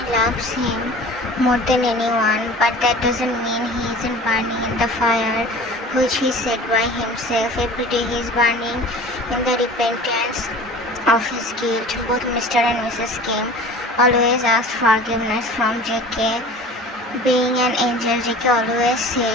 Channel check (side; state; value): both; normal; correlation 0.42